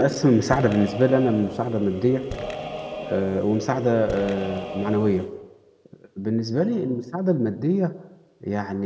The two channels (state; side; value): identical; both; correlation 1.00